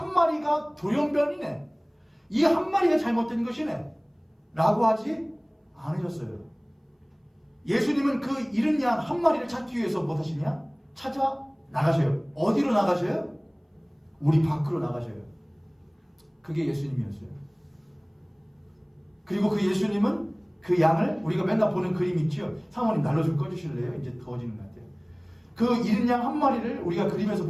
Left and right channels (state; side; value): identical; both; correlation 1.00